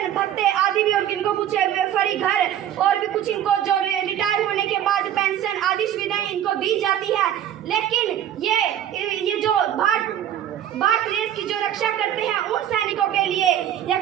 भत्ते आदि भी और इनको कुछ फ्री घर और भी कुछ इनको जो रिटायर होने के बाद पेंशन आदि सुविधाएं इनको दी जाती है। लेकिन ये जो भारत देश की जो रक्षा करते हैं उन सैनिकों के लिए या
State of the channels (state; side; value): quieter; left; 10.8 dB